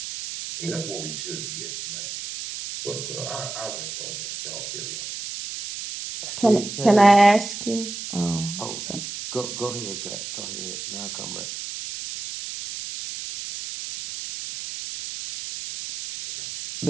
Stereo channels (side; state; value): right; noise; hiss, 7 dB below the sound